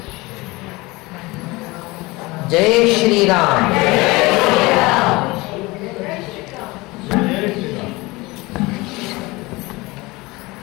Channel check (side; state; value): right; quieter; 22.5 dB